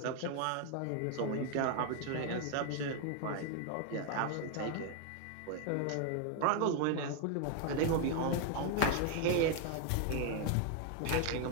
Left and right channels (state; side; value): different; both; correlation 0.00